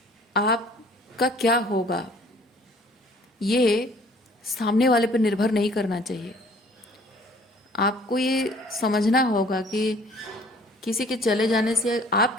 आपका क्या होगा ये सामने वाले पर निर्भर नहीं करना चाहिए। आपको ये समझना होगा कि किसी के चले जाने से, आप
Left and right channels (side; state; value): both; normal; correlation 0.55